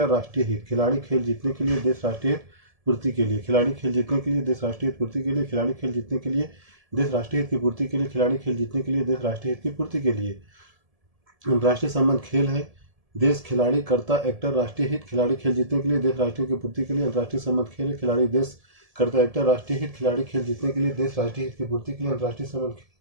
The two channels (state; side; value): late; left; 1.7 ms